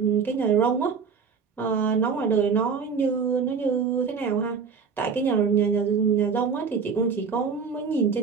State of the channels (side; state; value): left; quieter; 5.8 dB